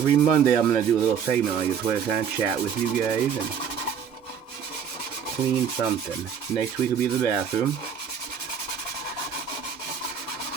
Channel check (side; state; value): left; quieter; 7.6 dB